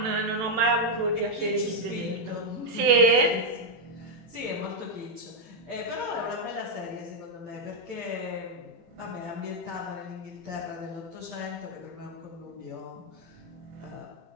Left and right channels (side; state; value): left; late; 18 ms